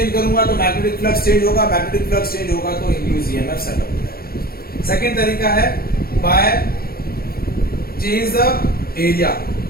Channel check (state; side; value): late; right; 0.44 ms